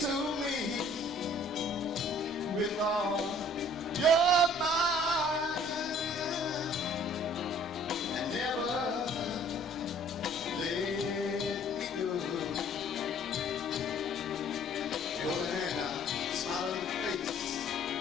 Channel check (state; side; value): normal; both; correlation 0.55